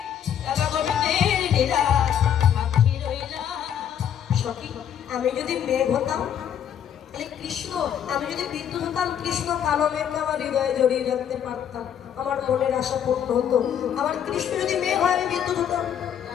রাধা গোবিন্দের লীলা, সাক্ষী রইলাম। সখী, আমি যদি মেঘ হতাম তাহলে কৃষ্ণ, আমি যদি বিদ্যুৎ হতাম কৃষ্ণ কালো মেঘকে আমার হৃদয়ে জড়িয়ে রাখতে পারতাম, আমার মনের আশা পূর্ণ হতো। আমার কৃষ্ণ যদি মেঘ হয় আমি বিদ্যুৎ হতাম,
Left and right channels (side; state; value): right; quieter; 9.2 dB